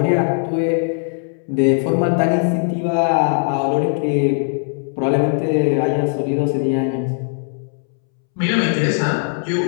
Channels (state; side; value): silent; right; 67 dB below the other